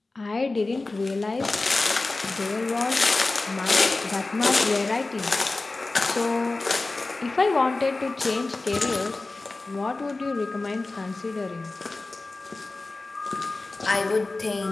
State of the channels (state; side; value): quieter; right; 3.3 dB